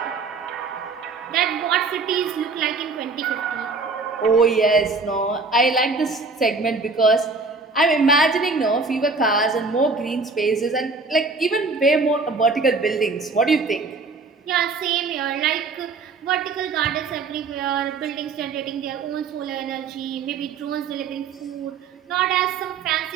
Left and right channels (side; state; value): left; quieter; 4.1 dB